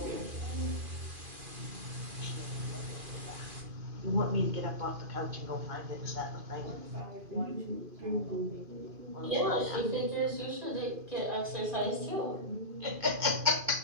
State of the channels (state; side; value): late; left; 2.5 ms